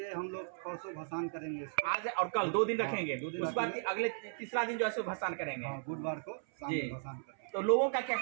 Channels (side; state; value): left; silent; 54 dB below the other